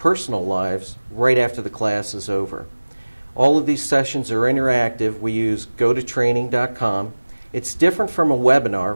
lives right after the class is over. All of these sessions are interactive. We use gototraining.com. It's different from a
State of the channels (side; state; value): both; inverted; correlation -1.00